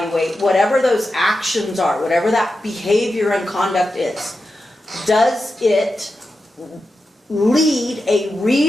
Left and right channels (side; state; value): both; normal; correlation 0.90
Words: whatever those actions are, whatever that behavior and conduct is. Does it lead a